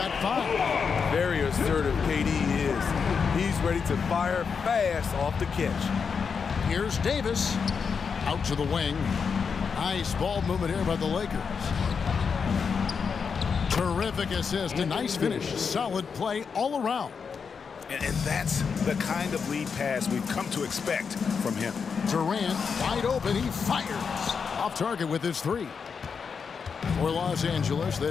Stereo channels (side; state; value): right; quieter; 5.9 dB